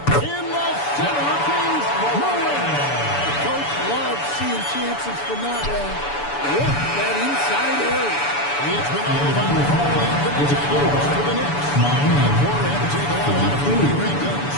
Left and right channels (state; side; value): late; right; 6.9 ms